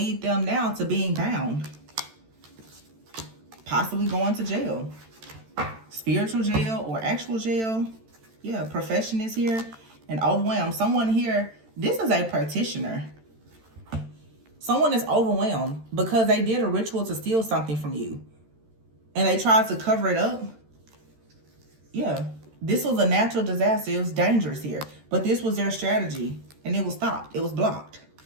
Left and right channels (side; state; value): left; late; 13 ms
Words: them now to being bound. Possibly going to jail. Spiritual jail or actual jail. Yeah, profession is here. And overwhelmed. Someone here, this is a practitioner. Someone is overwhelmed because they did a ritual to steal something from you. And they tried to cover it up. Yeah. This was a natural disaster. It was dangerous here. But this was their strategy. And it was stopped. It was blocked.